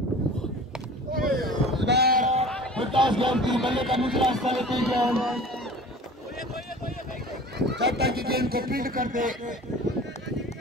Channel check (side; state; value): both; normal; correlation 0.41